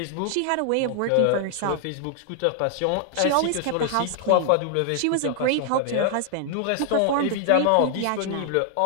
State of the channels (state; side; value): different; both; correlation 0.00